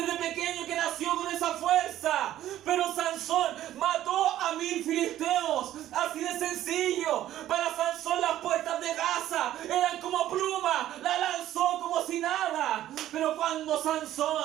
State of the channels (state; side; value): quieter; left; 12.9 dB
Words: pequeño que nació con esa fuerza, pero Sansón mató a 1000 filisteos, así de sencillo. Para Sansón las puertas de Gaza eran como pluma, la lanzó como si nada. Pero cuando